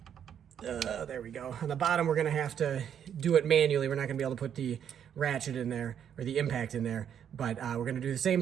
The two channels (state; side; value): quieter; left; 8.9 dB